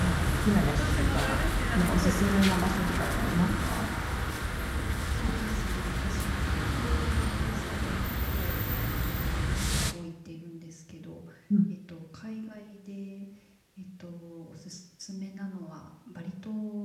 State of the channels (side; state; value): both; identical; correlation 1.00